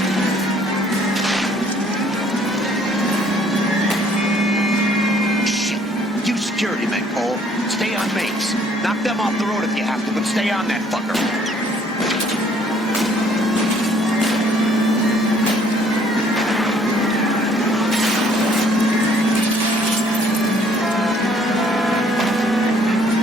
Shit. You security men, Cole. Stay on base. Knock them off the road if you have to, but stay on that fucker.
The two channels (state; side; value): normal; both; correlation 0.60